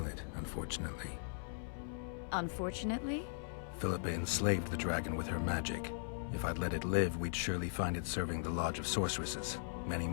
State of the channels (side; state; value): right; silent; 52 dB below the other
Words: it, unfortunately. Unfortunately? Philippa enslaved the dragon with her magic. If I'd let it live, we'd surely find it serving the Lodge of Sorceresses. Many